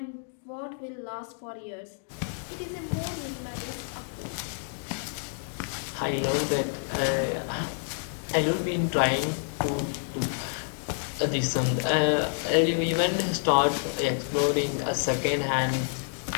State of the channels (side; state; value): right; silent; digital silence